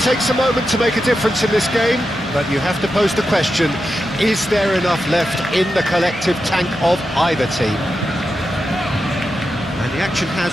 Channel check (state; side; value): normal; both; correlation 0.89